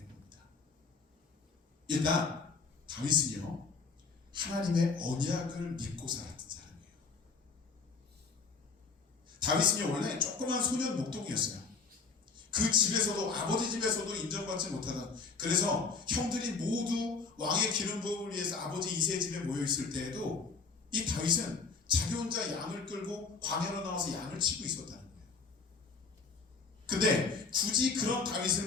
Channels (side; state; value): right; quieter; 4.8 dB